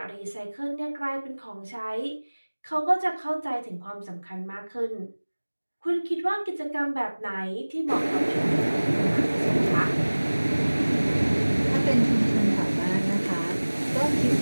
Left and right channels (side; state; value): both; inverted; correlation -1.00